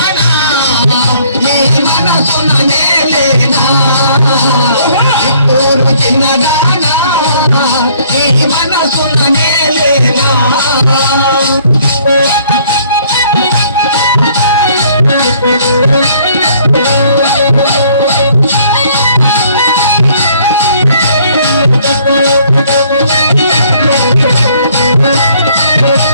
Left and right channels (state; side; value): inverted; both; correlation -0.61